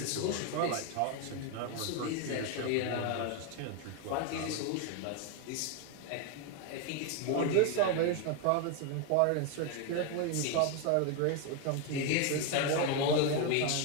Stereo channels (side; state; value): both; different; correlation 0.01